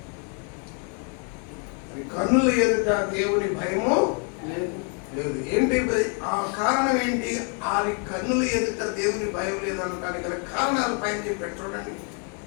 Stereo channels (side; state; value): right; quieter; 39.5 dB